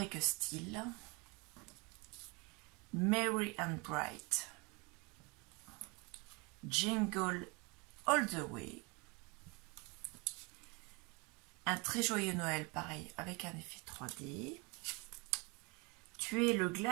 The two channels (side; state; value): left; quieter; 28.9 dB